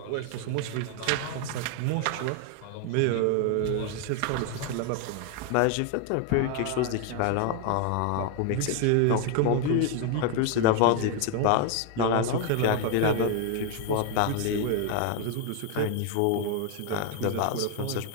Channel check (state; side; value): different; both; correlation 0.00